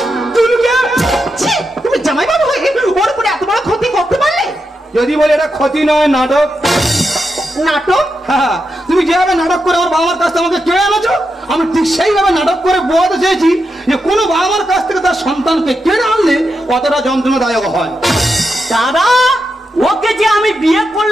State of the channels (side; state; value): both; normal; correlation 0.86